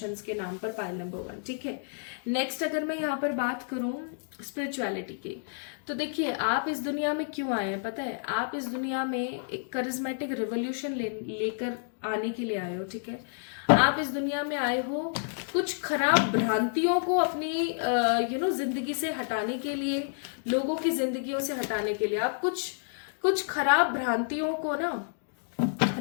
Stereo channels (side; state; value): right; silent; digital silence